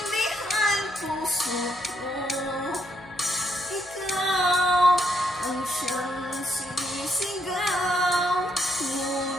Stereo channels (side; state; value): right; noise; hum, 27 dB below the sound